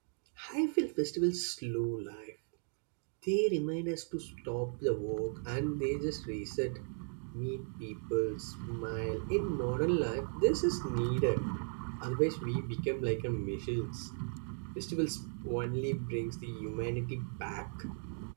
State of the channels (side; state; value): left; silent; 53 dB below the other